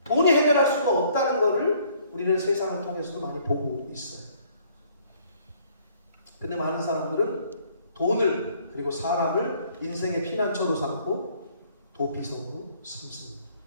돈이 해결할 수가 없다는 것을 우리는 세상을 통해서도 많이 보고 있어요. 근데 많은 사람들은 돈을 그리고 사람을 인생의 피난처로 삼고 도피성으로 삼습니다.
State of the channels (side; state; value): both; inverted; correlation -0.61